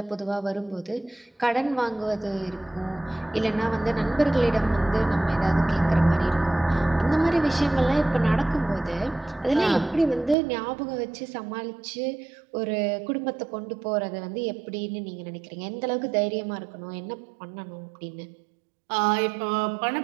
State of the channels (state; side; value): drops out; left; at 10.4 s